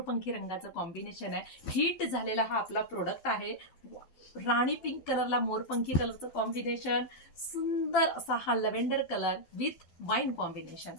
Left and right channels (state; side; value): late; right; 12 ms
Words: रंगाचं कॉम्बिनेशन आहे. हिट झालेला हा आपला प्रोडक्ट आहे. राणी पिंक कलरला मोरपंखी कलरचं कॉम्बिनेशन, सुंदर असा हा lavender colour with wine combination,